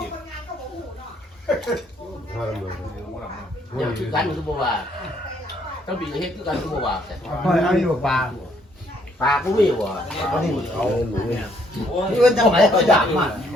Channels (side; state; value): both; normal; correlation 0.68